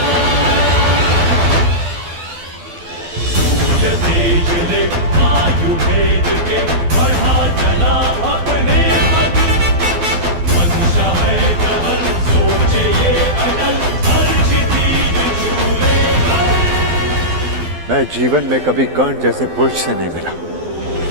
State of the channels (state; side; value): late; left; 12 ms